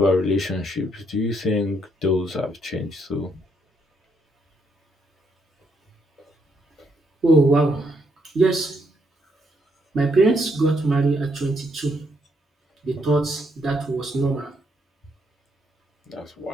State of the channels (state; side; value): normal; both; correlation 0.74